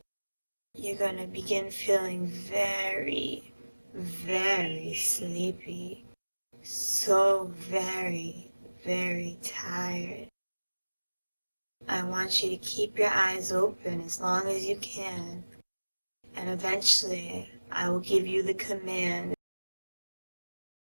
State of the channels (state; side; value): inverted; both; correlation -1.00